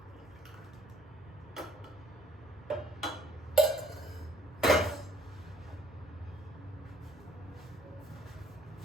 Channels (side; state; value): both; normal; correlation 0.60